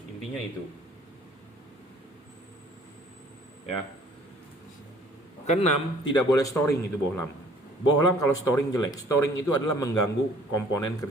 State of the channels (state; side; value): normal; both; correlation 0.56